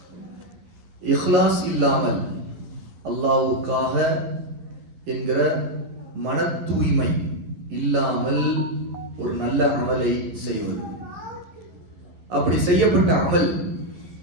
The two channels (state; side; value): late; left; 11 ms